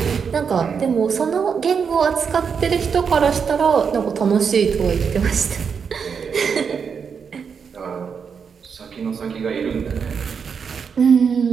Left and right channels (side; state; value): left; quieter; 6.4 dB